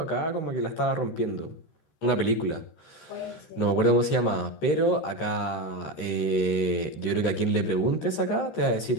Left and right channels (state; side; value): late; right; 13 ms